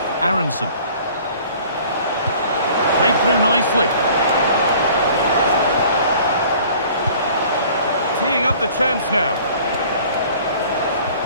Aronson. Played through nicely. Teeing up the chance now.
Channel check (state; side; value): inverted; both; correlation -0.50